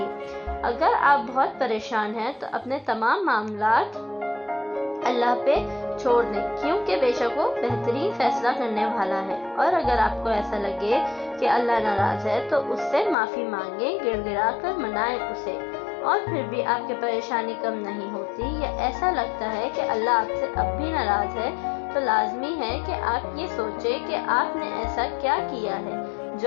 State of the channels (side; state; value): right; drops out; at 13.2 s